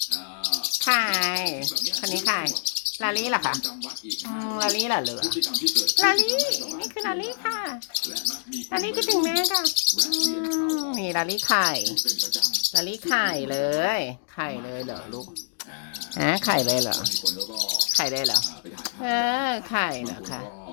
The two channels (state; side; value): silent; right; digital silence